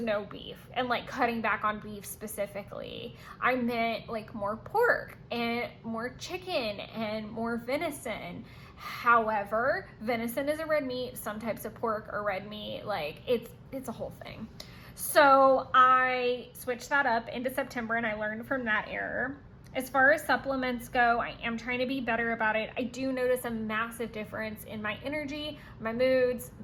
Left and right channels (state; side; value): identical; both; correlation 1.00